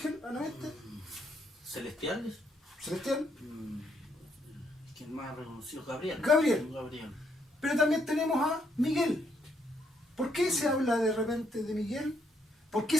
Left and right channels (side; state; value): both; normal; correlation 0.73